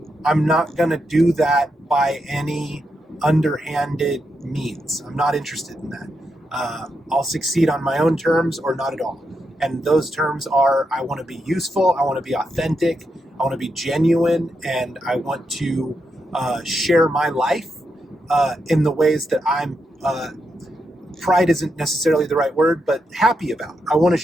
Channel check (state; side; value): normal; both; correlation 0.83